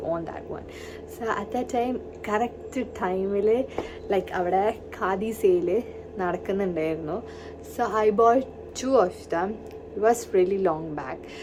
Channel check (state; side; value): identical; both; correlation 1.00